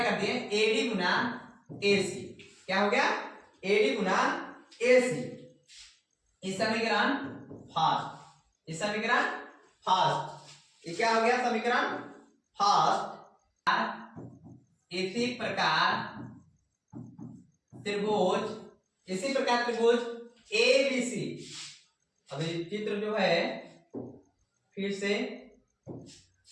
कर दिए एडी गुना एसी। क्या हो गया, एडी गुना एसी। इस समीकरण फर्स्ट, इस समीकरण फर्स्ट, ये क्या हो गया समीकरण फर्स्ट। इसी प्रकार त्रिभुज, इसी प्रकार त्रिभुज ए बी सी। अभी चित्र जो है फिर से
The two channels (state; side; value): identical; both; correlation 1.00